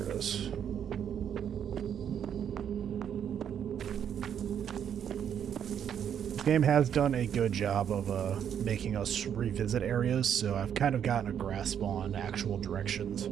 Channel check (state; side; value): quieter; left; 8.8 dB